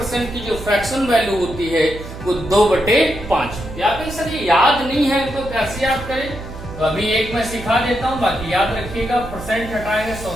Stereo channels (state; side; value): noise; right; hum, 12 dB below the sound